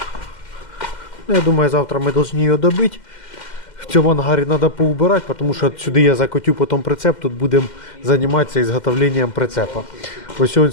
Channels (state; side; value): late; right; 2.1 ms